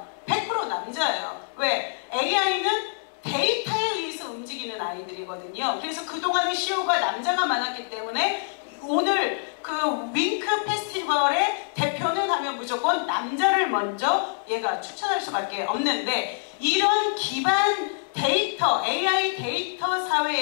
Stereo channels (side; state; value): right; silent; digital silence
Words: 100% 남자예요. 왜? AI는 데이터에 의해서 움직이는 아이들이거든요. 그래서 그동안의 CEO가 남자가 많았기 때문에 오늘 그 윙크 페스티벌의 대표는 하면 무조건 남자를 먼저 얘가 추천할 수밖에 없는데 이런 기반 데이터, AI 데이터